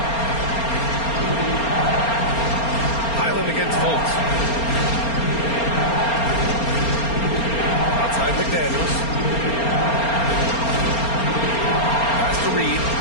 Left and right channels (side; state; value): right; late; 4.3 ms